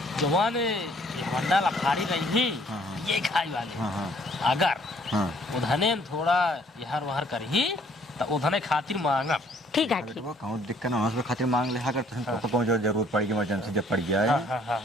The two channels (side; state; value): both; normal; correlation 0.61